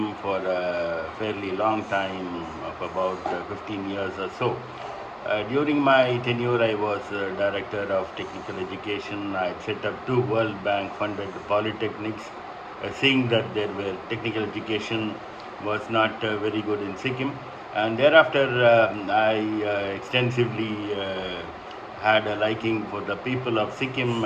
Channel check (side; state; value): both; identical; correlation 1.00